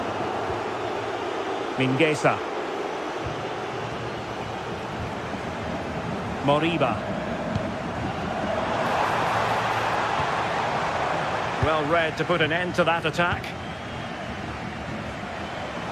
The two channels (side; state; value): both; identical; correlation 1.00